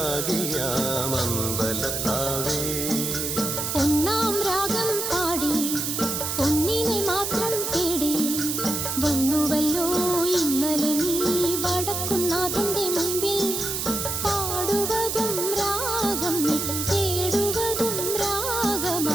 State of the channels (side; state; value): right; noise; hiss, 2 dB below the sound